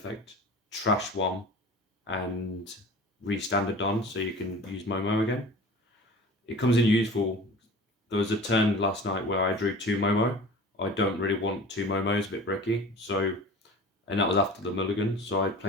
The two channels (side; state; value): both; normal; correlation 0.39